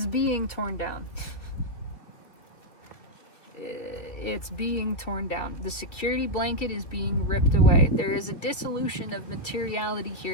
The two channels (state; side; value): late; right; 3.0 ms